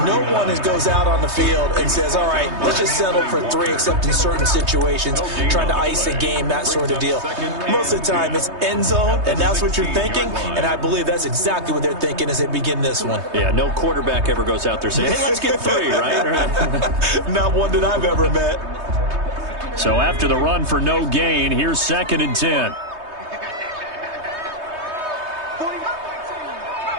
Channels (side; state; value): left; late; 3.2 ms